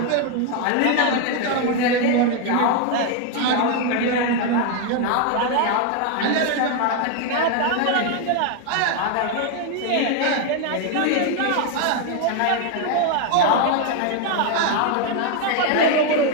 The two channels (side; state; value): both; different; correlation 0.01